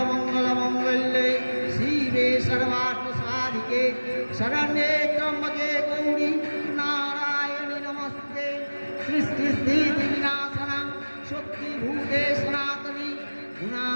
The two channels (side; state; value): both; inverted; correlation -1.00